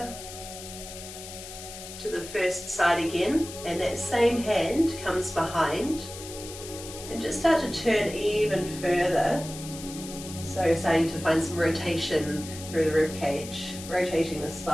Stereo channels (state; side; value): noise; left; hiss, 12 dB below the sound